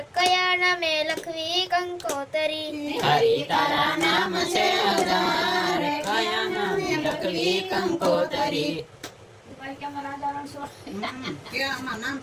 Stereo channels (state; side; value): identical; both; correlation 1.00